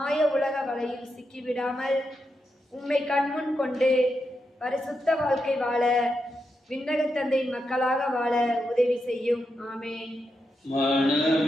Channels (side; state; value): both; normal; correlation 0.85